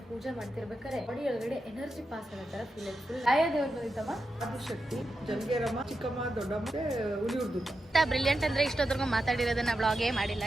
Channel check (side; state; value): both; normal; correlation 0.88